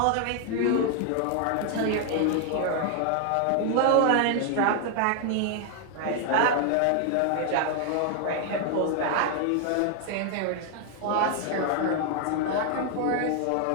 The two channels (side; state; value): both; different; correlation 0.00